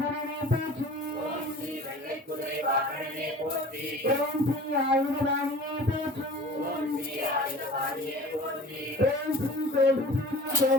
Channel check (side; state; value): both; normal; correlation 0.42